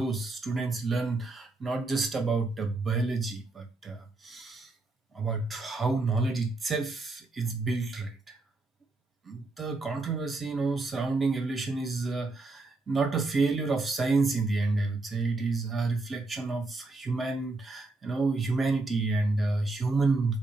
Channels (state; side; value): quieter; left; 3.2 dB